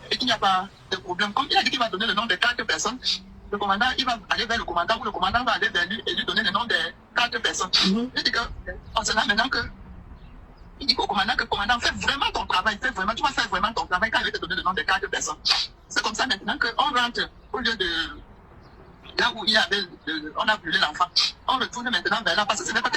et qu'il n'y a pas de problème, comme il a dit qu'il va donner le nom de 4 personnes, le commandant, il va aller vers le commandant ou le commandant va aller vers lui et lui donner le nom de 4 personnes. Il dit que, on se là maintenant que, il dit au commandant que commandant, fais vraiment ton travail, tu vas faire vraiment ton travail quand il va te donner le nom de 4 personnes. C'est comme ça maintenant qu'on rentre au lieu de là où il y avait, on a brûlé l'enfant. On retourne maintenant vers là parce que ce n'est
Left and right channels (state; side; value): identical; both; correlation 1.00